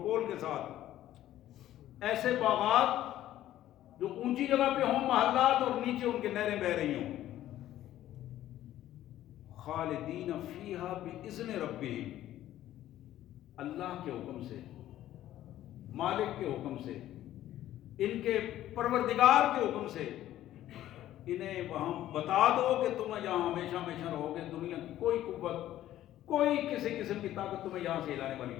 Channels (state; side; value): quieter; right; 13.2 dB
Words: کے ساتھ، ایسے باغات جو اونچی جگہ پہ ہوں محلات اور نیچے ان کے نہریں بہہ رہی ہوں، خالدین فیہا باذن ربہم، اللہ کے حکم سے، مالک کے حکم سے، ان کے پروردگار کے حکم سے، انہیں وہاں بتا دو کہ تم یہاں ہمیشہ ہمیشہ رہو گے، دنیا کی کوئی قوت، کوئی کسی قسم کی طاقت تمہیں یہاں سے ہلانے والی